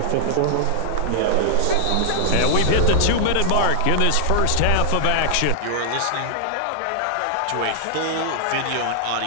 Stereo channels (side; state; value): both; different; correlation 0.00